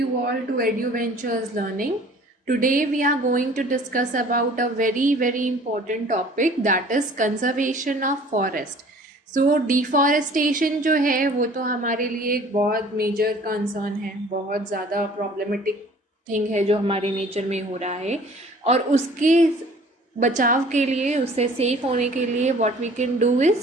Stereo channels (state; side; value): normal; both; correlation 0.50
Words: all to EduVentures Learning. Today we are going to discuss about a very important topic, that is conservation of forest. So deforestation जो है वो तो हमारे लिए एक बहुत major concern है, बहुत ज़्यादा प्रॉब्लमेटिक थिंग है जो हमारे नेचर में हो रहा है, और उसके बचाव के लिए, उससे सेफ होने के लिए what we can do